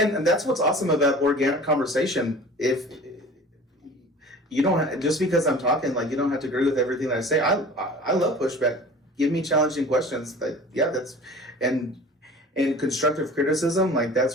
that's what's awesome about organic conversation. If you don't, just because I'm talking, like, you don't have to agree with everything that I say. I love pushback. Give me challenging questions. And constructive criticism, like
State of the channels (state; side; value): normal; both; correlation 0.41